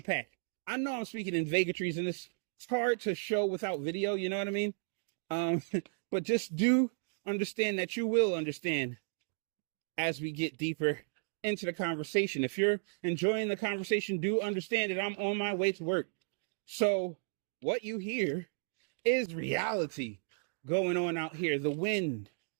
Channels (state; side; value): silent; left; digital silence